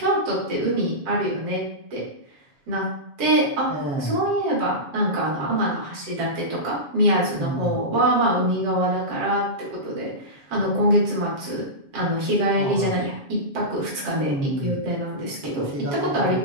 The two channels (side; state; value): left; late; 7.2 ms